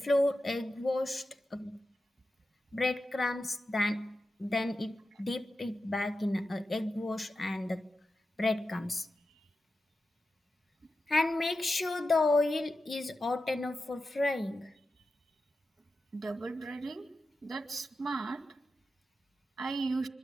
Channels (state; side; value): normal; both; correlation 0.91